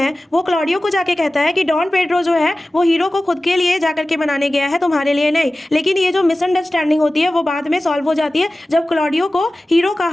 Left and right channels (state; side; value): normal; both; correlation 0.96